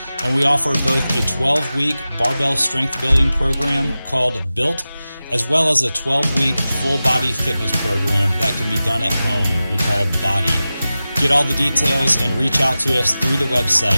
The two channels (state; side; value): inverted; both; correlation -0.95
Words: and we offer both a 12-week barbell strength building program called Built, as well as a 12-week full-body fitness program that can be done at home. We call Body. Get all the details and reach out to us through the